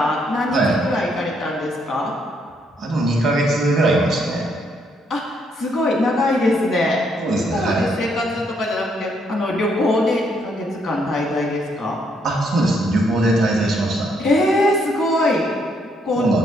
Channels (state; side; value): normal; both; correlation 0.73